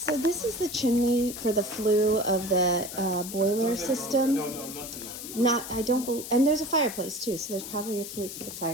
this is the chimney for the flue of the boiler system. And there's a fireplace too, so there's probably a flute for the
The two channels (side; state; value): left; noise; hiss, 10 dB below the sound